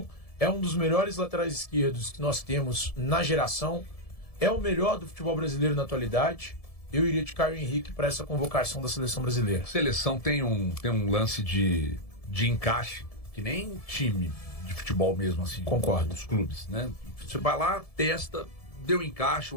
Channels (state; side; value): late; right; 1.7 ms